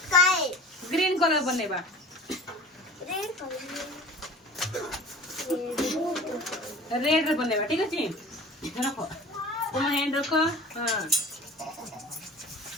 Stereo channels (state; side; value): normal; both; correlation 0.41